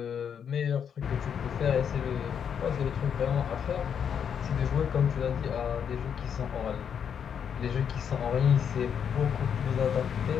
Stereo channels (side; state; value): right; quieter; 7.8 dB